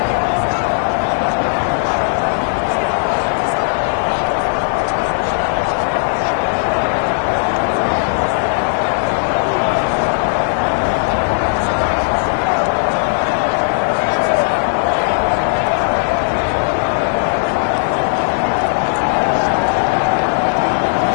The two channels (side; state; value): right; silent; 69 dB below the other